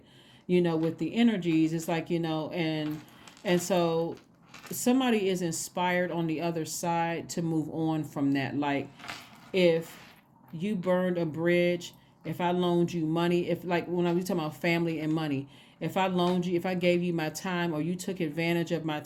with the energies. It's like, and so somebody is inspired on the other side to move on from that. Like if you burned a bridge, if I loaned you money, if like when I was talking about family and money, if I gave you my time, or you took advantage of my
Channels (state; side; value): identical; both; correlation 1.00